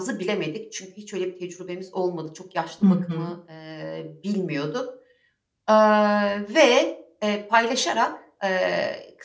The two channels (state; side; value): identical; both; correlation 1.00